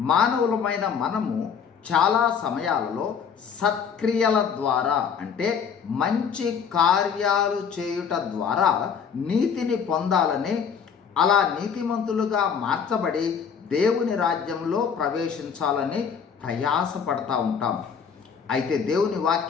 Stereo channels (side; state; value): right; quieter; 6.9 dB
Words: మానవులమైన మనము చాలా సమయాలలో సత్క్రియల ద్వారా అంటే మంచి కార్యాలు చేయుట ద్వారా నీతిని పొందాలని, అలా నీతిమంతులుగా మార్చబడి దేవుని రాజ్యంలో ప్రవేశించాలని ప్రయాసపడతా ఉంటాం. అయితే దేవుని